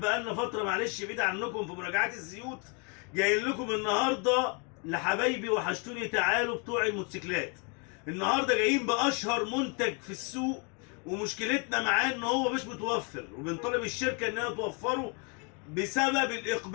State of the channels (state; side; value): quieter; right; 33.8 dB